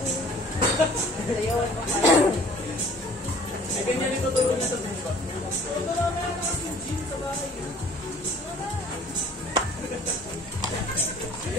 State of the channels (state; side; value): normal; both; correlation 0.51